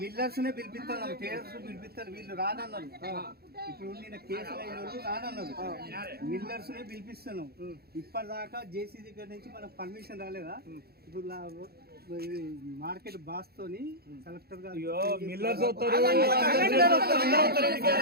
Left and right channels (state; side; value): late; left; 0.46 ms